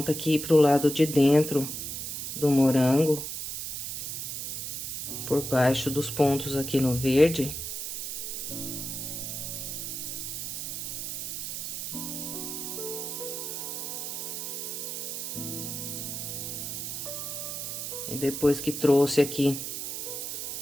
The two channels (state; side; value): noise; right; hiss, 5 dB below the sound